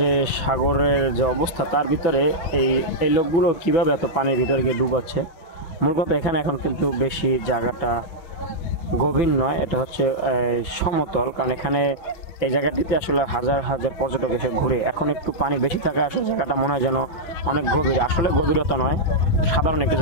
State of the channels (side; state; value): right; late; 5.9 ms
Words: সাগরের যে অবস্থা তার ভিতরে এই এই লোকগুলো কিভাবে এত পানির ভিতরে গিয়ে ডুবাচ্ছে। মূল কথা এখানে এখন কিন্তু বেশি জায়গাটা গভীর নয়, এটা হচ্ছে সমতল, কারণ এখানে এই জায়গাটিতে আসলে হাজার হাজার পর্যটক এসে ঘুরে। এখন একটু পানি বেশি থাকায় আসলে জায়গাটা মনে হয় যেন অনেক গভীর, আসলে গভীরতা নয়, সাধারণ একটু